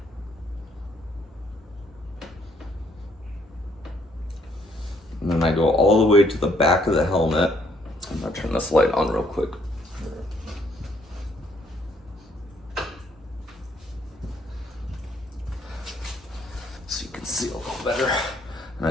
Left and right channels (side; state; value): both; normal; correlation 0.68